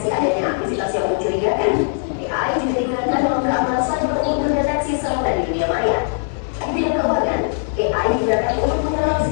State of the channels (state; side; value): silent; right; digital silence